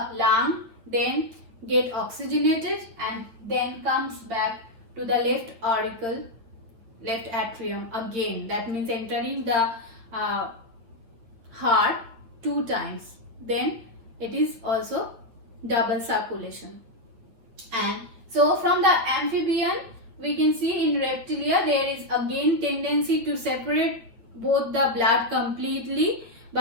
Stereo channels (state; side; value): late; left; 9.2 ms